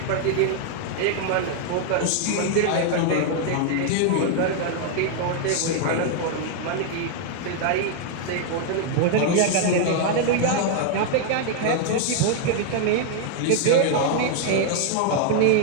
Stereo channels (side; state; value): both; different; correlation 0.00